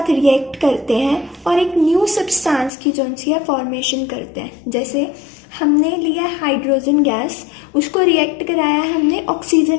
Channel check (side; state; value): right; drops out; at 2.7 s